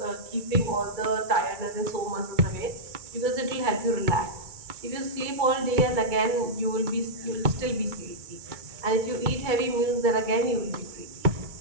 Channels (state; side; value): late; left; 2.2 ms